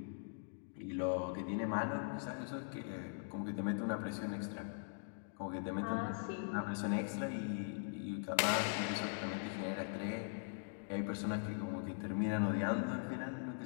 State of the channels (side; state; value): right; silent; digital silence